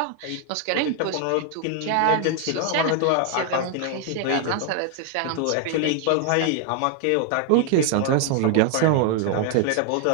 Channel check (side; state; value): both; different; correlation 0.00